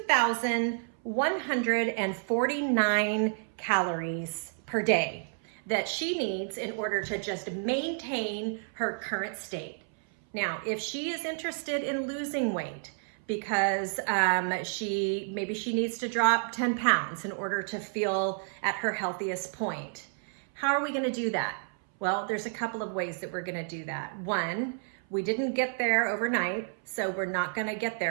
calories per day that she needs in order to just maintain her current state. Now, if she is interested in losing weight because maybe she needs to drop 10 pounds in order to feel at her healthiest point, how are we going to do that? Well, there's a couple of ways that we're going to do that. One, we didn't get there overnight, so we're not going to get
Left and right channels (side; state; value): left; silent; 57 dB below the other